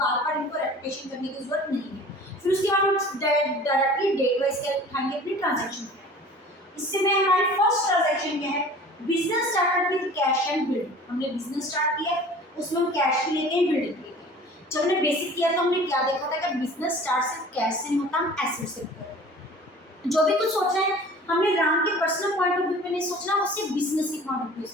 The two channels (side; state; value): both; normal; correlation 0.44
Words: बार इनको रेपिटेशन करने की जरूरत नहीं है। फिर उसके बाद हम डायरेक्टली डेट वाइज क्या उठाएंगे? अपनी ट्रांजेक्शन। इससे में हमारी फर्स्ट ट्रांजेक्शन क्या है? Business started with cash and building. हमने बिजनेस स्टार्ट किया, उसमें हम कैश भी लेके बिल्डिंग। जब हमने बेसिक किया तो हमने क्या देखा था कि बिजनेस स्टार्ट सिर्फ कैश से नहीं होता, हम एसेट से करते। जो भी कुछ सोचना है हमने राम के पर्सनल पॉइंट ऑफ व्यू में नहीं सोचना, उससे बिजनेस के पॉइंट ऑफ व्यू